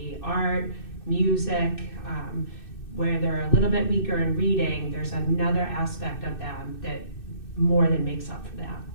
art, music. Where they're a little bit weaker in reading, there's another aspect of them that more than makes up for that.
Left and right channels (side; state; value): right; late; 2.6 ms